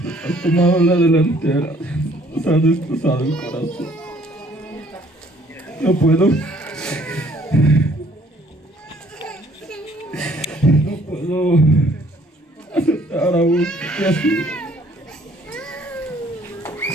has tomado la delantera, nos has destrozado el corazón. No puedo aceptar aún que así.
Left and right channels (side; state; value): both; normal; correlation 0.60